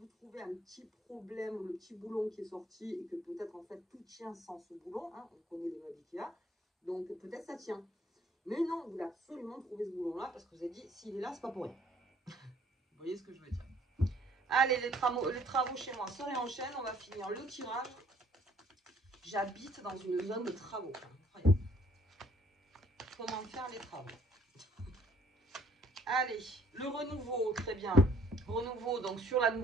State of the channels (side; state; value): both; normal; correlation 0.61